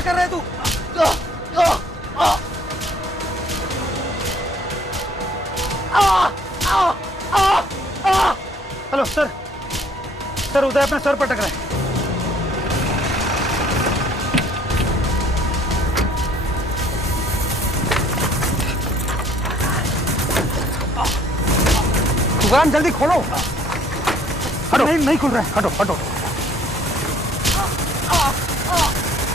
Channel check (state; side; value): normal; both; correlation 0.60